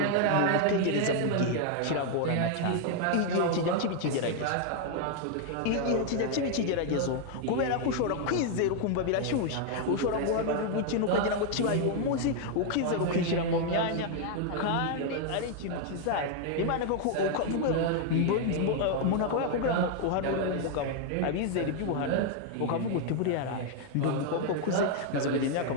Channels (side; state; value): both; different; correlation 0.00